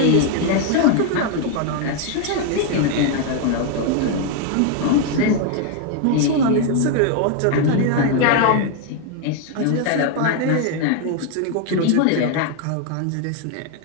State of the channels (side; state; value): both; different; correlation 0.00